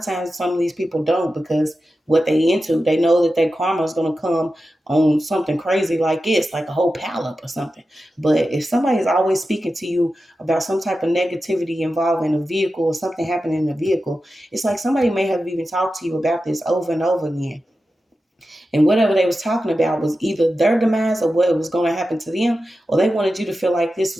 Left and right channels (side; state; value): both; normal; correlation 0.92